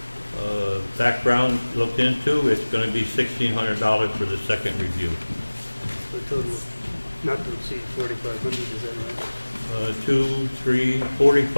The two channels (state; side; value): inverted; both; correlation -1.00